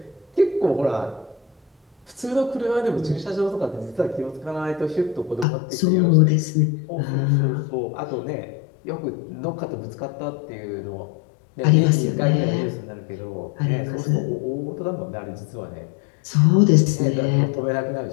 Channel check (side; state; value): right; drops out; at 5.5 s